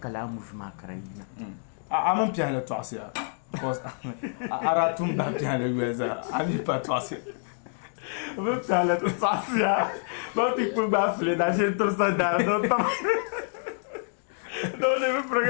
la mu ma karayina amon piano to asia because ara tun da piano weza ami pa to asia vou falar do passear vou ter que pegar a filha da gente torcedora não deve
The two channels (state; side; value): silent; right; digital silence